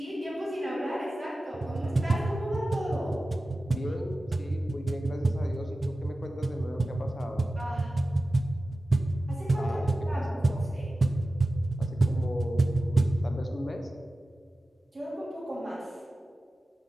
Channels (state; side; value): normal; both; correlation 0.95